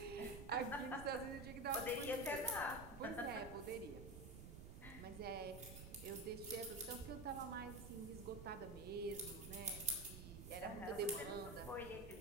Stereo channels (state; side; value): noise; right; rumble, 10 dB below the sound